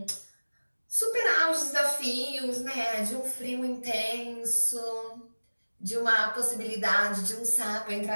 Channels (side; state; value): both; inverted; correlation -1.00